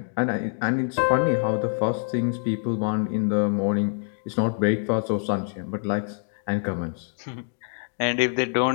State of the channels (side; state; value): right; silent; 61 dB below the other